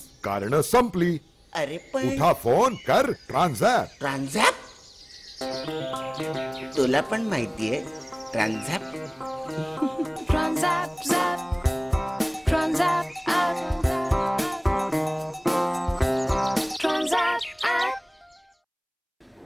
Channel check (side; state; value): both; identical; correlation 1.00